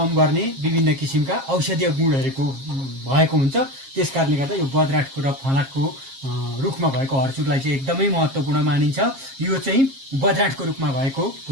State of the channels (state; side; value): late; left; 7.4 ms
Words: गर्ने विभिन्न किसिमका औषधीय गुणहरूको भएको हुन्छ। त्यसकारणले गर्दा यो बज्राँटको र फलाटको रुखमा भएको हर्चुरलाई चाहिँ एकदमै महत्त्वपूर्ण मानिन्छ। यो चाहिँ बज्राँटको रुखमा भएको